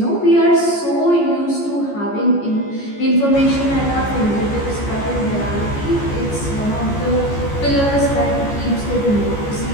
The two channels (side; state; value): right; late; 14 ms